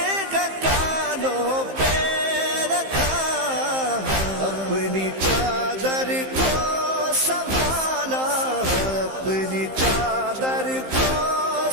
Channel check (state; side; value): late; left; 15 ms